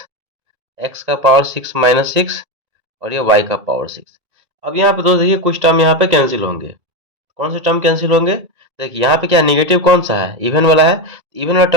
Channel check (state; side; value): late; left; 2.0 ms